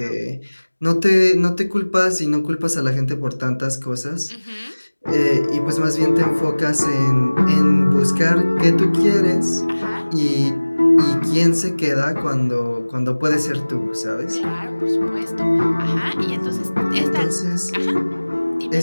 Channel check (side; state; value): both; inverted; correlation -1.00